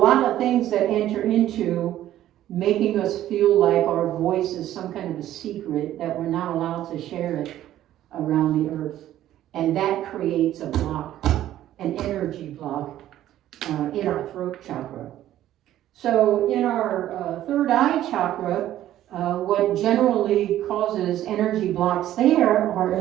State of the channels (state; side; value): quieter; left; 12.9 dB